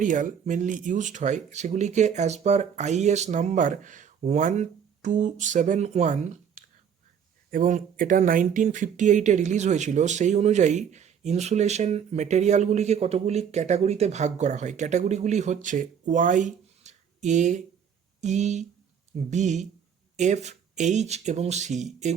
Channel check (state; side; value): quieter; left; 7.8 dB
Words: মেনলি ইউজড হয় সেগুলিকে অ্যাজ পার আইএস নাম্বার 1271, এবং এটা 1958-এ রিলিজ হয়েছিল। সেই অনুযায়ী ইনসুলেশন মেটেরিয়ালগুলিকে কতগুলি ক্যাটাগরিতে ভাগ করা হয়। ক্যাটাগরিগুলি হচ্ছে ওয়াই, এ, ই, বি, এফ, এইচ এবং সি।